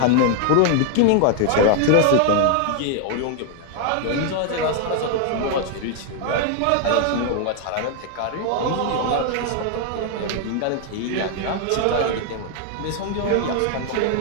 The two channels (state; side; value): different; both; correlation 0.00